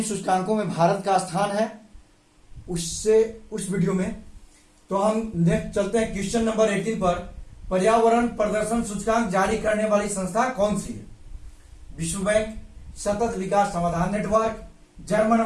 सूचकांकों में भारत का स्थान है। उस वीडियो में तो हम नेक्स्ट चलते हैं क्वेश्चन नंबर 18 पर। पर्यावरण प्रदर्शन सूचकांक जारी करने वाली संस्था कौन सी है? विश्व बैंक, सतत विकास समाधान नेटवर्क,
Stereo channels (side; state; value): both; identical; correlation 1.00